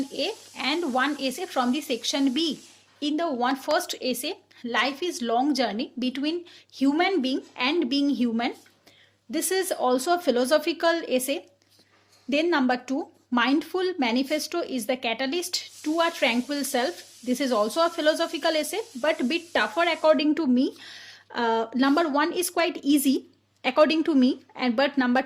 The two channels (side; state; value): both; identical; correlation 1.00